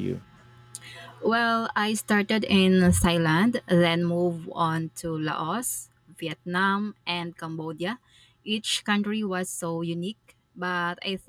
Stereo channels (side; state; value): both; identical; correlation 1.00